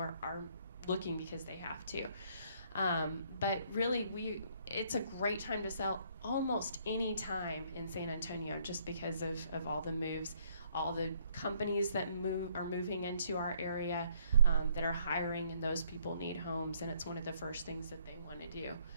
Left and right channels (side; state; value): both; inverted; correlation -0.66